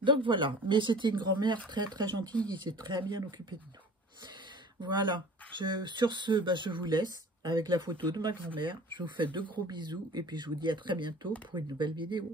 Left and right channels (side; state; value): both; normal; correlation 0.44